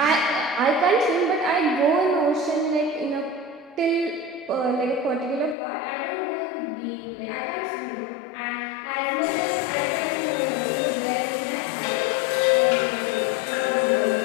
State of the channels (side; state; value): right; drops out; at 5.6 s